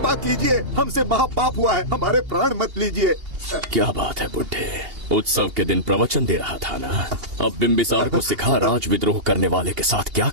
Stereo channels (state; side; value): late; left; 2.8 ms